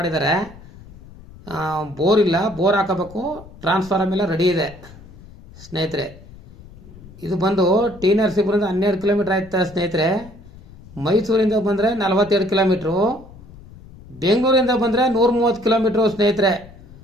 ಬೋರ್ ಇಲ್ಲ, ಬೋರ್ ಹಾಕಬೇಕು. ಟ್ರಾನ್ಸ್ಫಾರ್ಮ್ ಎಲ್ಲ ರೆಡಿ ಇದೆ ಸ್ನೇಹಿತರೆ. ಇದು ಬಂದು ಟಿ ನರಸೀಪುರದಿಂದ 12 ಕಿಲೋಮೀಟರ್ ಆಯ್ತಾ ಸ್ನೇಹಿತರೆ. ಮೈಸೂರಿಂದ ಬಂದರೆ 42 ಕಿಲೋಮೀಟ್ರು. ಬೆಂಗಳೂರಿಂದ ಬಂದರೆ 130 ಕಿಲೋಮೀಟ್ರು ಸ್ನೇಹಿತರೆ.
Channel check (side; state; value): left; noise; rumble, 20 dB below the sound